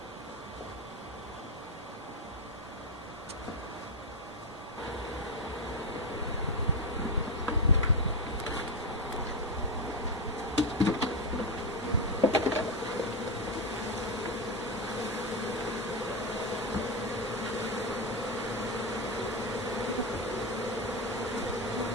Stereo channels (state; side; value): normal; both; correlation 0.11